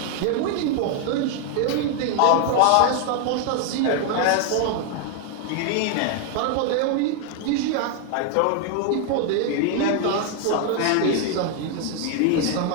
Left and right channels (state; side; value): different; both; correlation 0.00